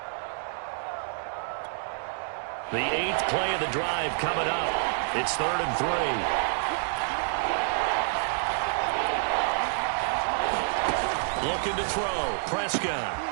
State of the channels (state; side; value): silent; left; digital silence